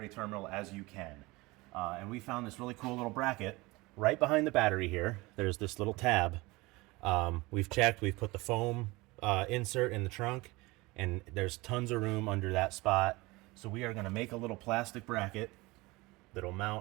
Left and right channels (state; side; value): quieter; left; 22.4 dB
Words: terminal as you can. And we found this really cool little bracket right behind the battery here. There's this little tab. We've checked, we've put the foam insert in the trunk, and there's tons of room under that spot. So we are going to make a little plastic bracket that'll